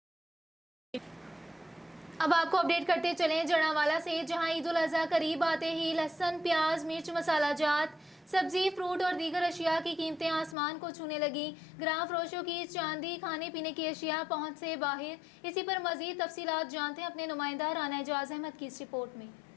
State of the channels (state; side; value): drops out; right; at 10.6 s